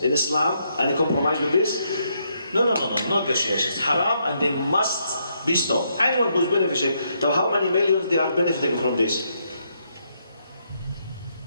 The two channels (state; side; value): inverted; both; correlation -0.77